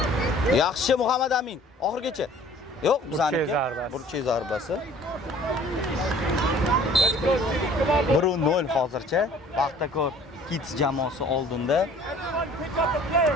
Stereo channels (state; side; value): normal; both; correlation 0.51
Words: Yaxshi Muhammad Amin. Oxirgacha. Yo'q, bizaniki. Burchi zarbasi. 1-0 hozircha. Paxtakor Kids jamoasi oldinda.